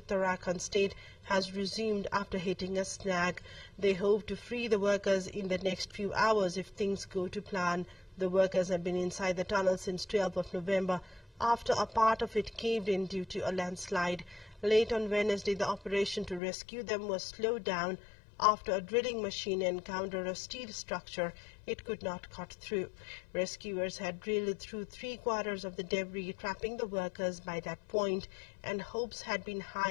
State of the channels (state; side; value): drops out; right; at 16.4 s